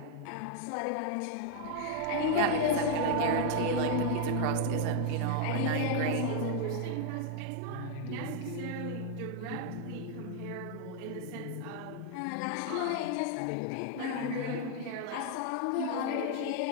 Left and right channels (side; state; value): both; different; correlation 0.00